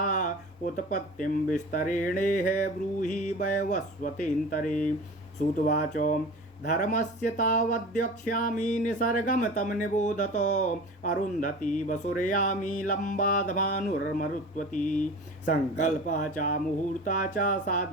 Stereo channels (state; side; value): normal; both; correlation 0.36